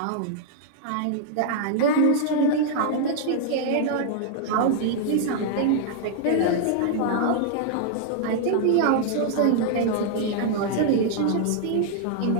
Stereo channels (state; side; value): different; both; correlation -0.01